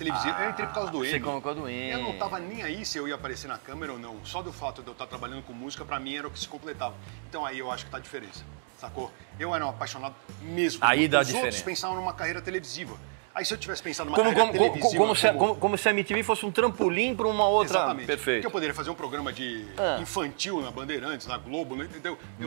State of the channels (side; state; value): left; silent; digital silence